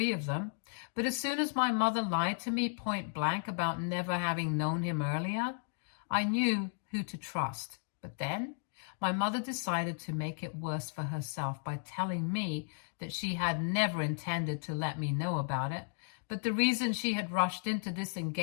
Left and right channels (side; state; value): right; silent; 55 dB below the other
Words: of them. But as soon as my mother lied to me point blank about never having known him earlier, I knew who to trust. But then my mother decided to make it worse for herself by telling me that she had never intended to let me know about it. But the reason she had rushed into this